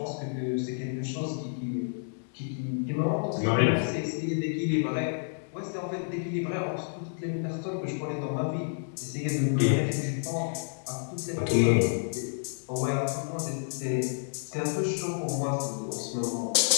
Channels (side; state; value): right; silent; digital silence